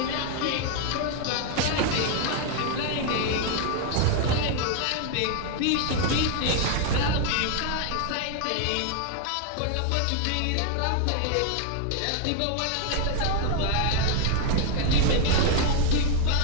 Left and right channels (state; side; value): different; both; correlation 0.00